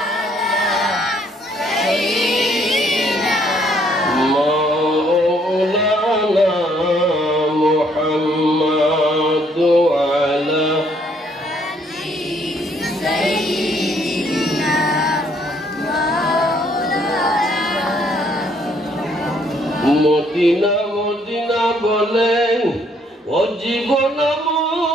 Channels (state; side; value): normal; both; correlation 0.66